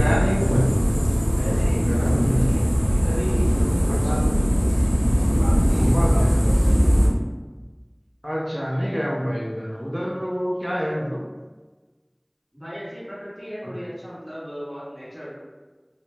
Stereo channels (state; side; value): identical; both; correlation 1.00